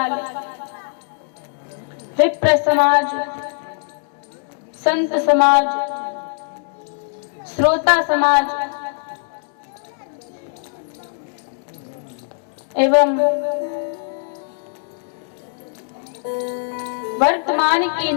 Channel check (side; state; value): right; silent; 65 dB below the other